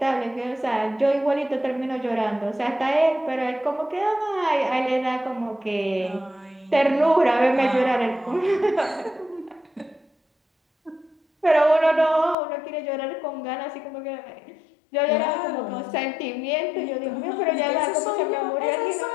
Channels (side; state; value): right; drops out; at 12.4 s